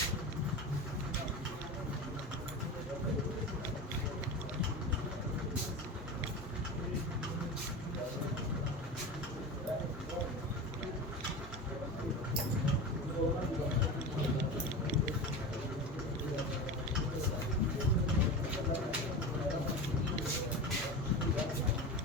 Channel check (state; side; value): normal; both; correlation 0.27